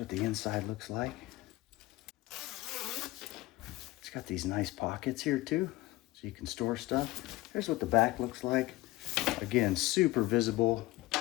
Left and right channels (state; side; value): quieter; right; 19.0 dB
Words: the inside looks like. It's got these nice pockets here too, so you can store stuff. Here's what the back looks like. Again, super visible.